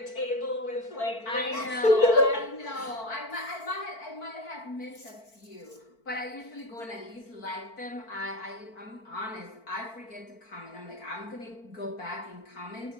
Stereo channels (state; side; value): late; right; 4.5 ms